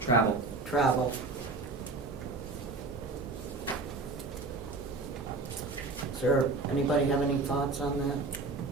travel? travel. Sir, anybody have any thoughts on that?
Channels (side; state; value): left; quieter; 3.7 dB